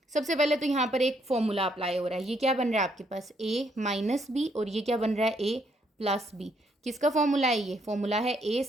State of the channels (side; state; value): both; normal; correlation 0.71